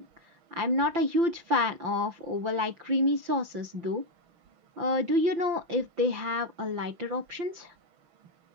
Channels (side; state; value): left; late; 5.8 ms